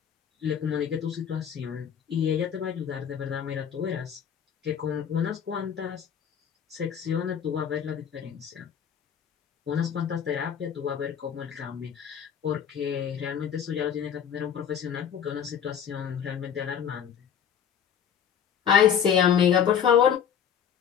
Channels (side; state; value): right; quieter; 8.4 dB